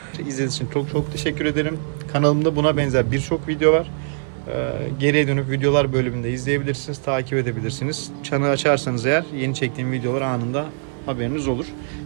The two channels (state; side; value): silent; left; 58 dB below the other